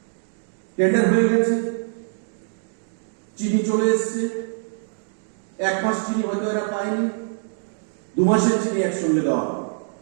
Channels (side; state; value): left; silent; digital silence